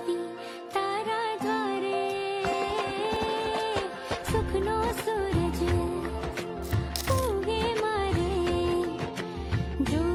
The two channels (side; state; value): both; identical; correlation 1.00